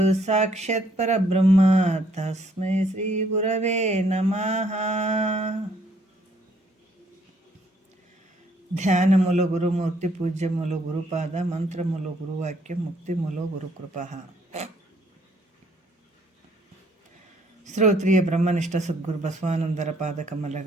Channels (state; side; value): normal; both; correlation 0.66